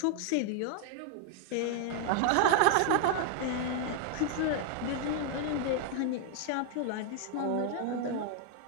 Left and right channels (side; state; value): both; different; correlation -0.01